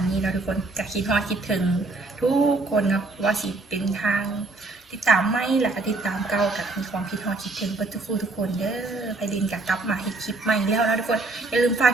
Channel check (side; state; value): left; quieter; 3.2 dB